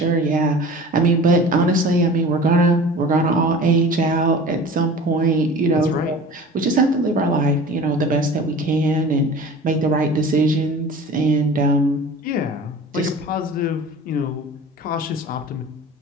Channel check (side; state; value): both; normal; correlation 0.39